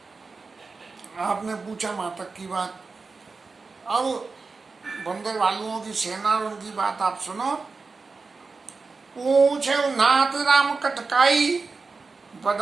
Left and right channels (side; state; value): left; quieter; 4.3 dB